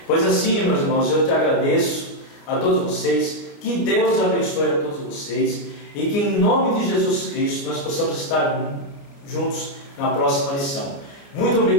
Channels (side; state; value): right; late; 29 ms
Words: Pois assim, meus irmãos, eu te agradeço a todos vocês, que Deus abençoe a todos vocês e que em nome de Jesus Cristo nós possamos estar juntos na próxima lição. Muito